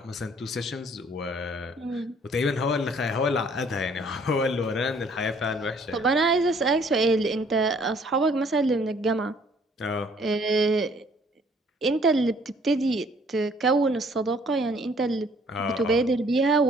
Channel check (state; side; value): normal; both; correlation 0.60